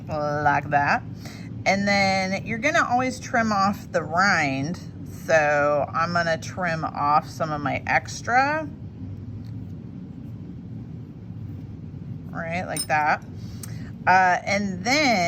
like that. And then you're gonna always trim off the rind. So I'm gonna trim off some of my extra, right, like that. And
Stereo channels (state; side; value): identical; both; correlation 1.00